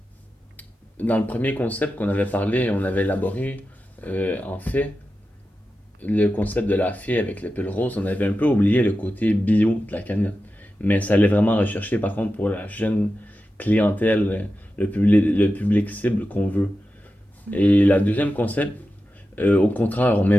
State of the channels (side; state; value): both; normal; correlation 0.92